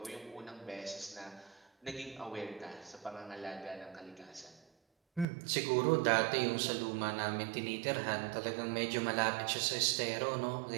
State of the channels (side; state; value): left; drops out; at 5.2 s